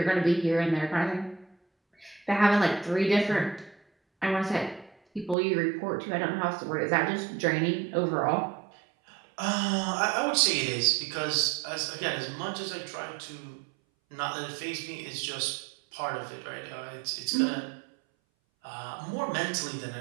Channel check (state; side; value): drops out; left; at 5.4 s